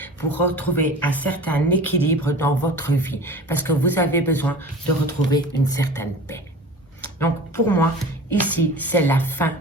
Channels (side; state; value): both; normal; correlation 0.39